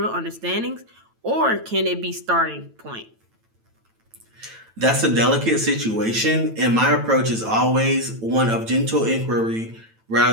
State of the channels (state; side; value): late; left; 9.0 ms